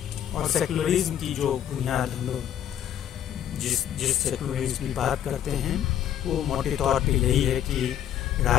और सेकुलरिज्म की जो बुनियाद हम लोग जिस सेकुलरिज्म की बात करते हैं वो मोटे तौर पे यही है कि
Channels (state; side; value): quieter; right; 10.4 dB